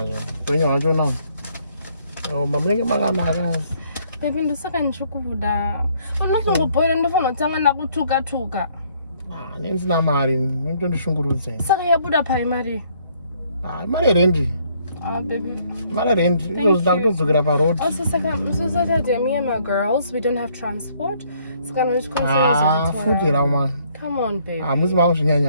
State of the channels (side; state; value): both; inverted; correlation -0.66